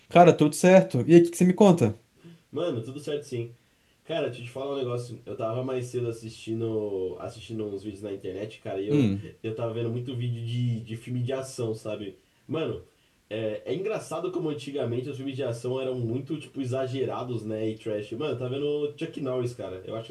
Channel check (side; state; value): both; identical; correlation 1.00